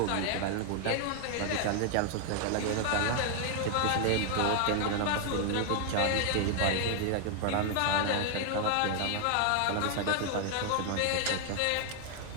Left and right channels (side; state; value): both; different; correlation 0.00